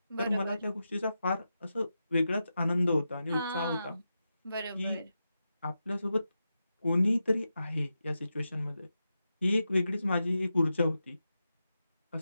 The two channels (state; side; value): inverted; both; correlation -0.90